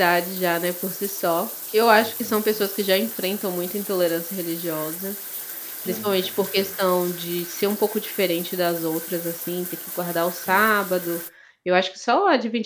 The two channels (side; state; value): both; identical; correlation 1.00